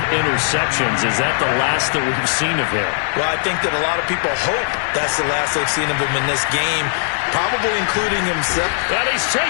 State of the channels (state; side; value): silent; right; digital silence